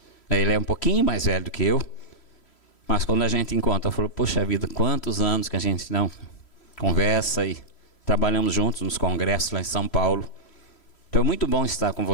Ele é um pouquinho mais velho do que eu, mas quando a gente encontra, eu falo, poxa vida, quantos anos que a gente não conversa e trabalhamos juntos nos congressos lá em São Paulo. Então é muito bom estar com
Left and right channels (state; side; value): late; right; 3.1 ms